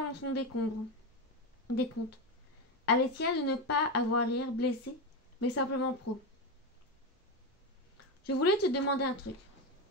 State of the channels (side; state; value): both; normal; correlation 0.13